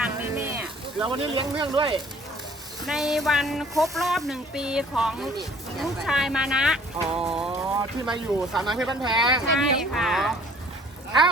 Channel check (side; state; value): both; normal; correlation 0.55